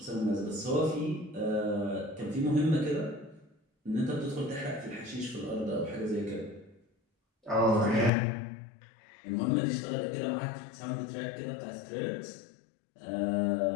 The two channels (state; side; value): drops out; right; at 8.1 s